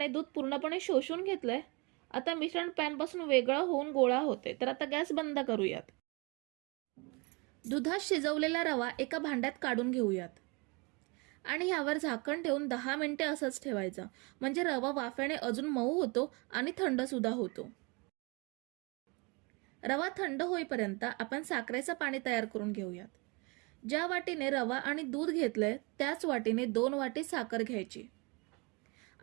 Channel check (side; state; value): left; quieter; 29.1 dB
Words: दूध पूर्णपणे शोषून घेतलंय। आता मिश्रण पॅनपासून वेगळं होऊन गोळा होते, तर आता गॅस बंद करूयात। दुधात शिजवलेला रवा एका भांड्यात काढून घेऊयात आणि ह्यावर झाकण ठेवून 10 मिनिटे असंच ठेवायचं, म्हणजे रवा वाफेने अजून मऊ होतो आणि थंड सुद्धा होतो। रवा थंड होईपर्यंत आपण साखरेचं पाणी तयार करून घेऊयात। ज्या वाटीने रवा आणि दूध घेतलंय त्याच वाटीने 2 वाटी साखर घ्यायची